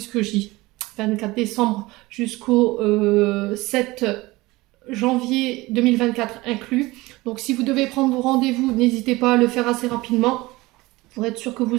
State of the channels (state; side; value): quieter; left; 20.7 dB